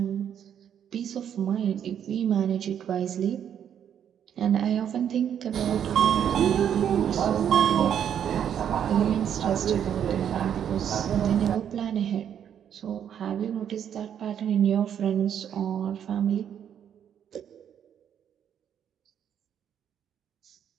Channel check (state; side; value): quieter; left; 9.1 dB